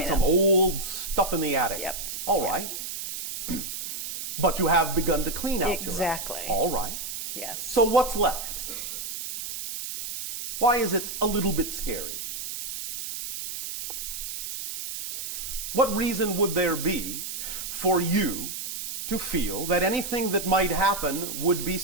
right, some up. old stuff in the attic. Yep. All right. But you have begun to clean out Exactly. your attic. All right. Yes. So what's left? Why is it a little bit scary? What reason would there be for you to feel that anything that might happen would be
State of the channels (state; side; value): noise; right; hiss, 6 dB below the sound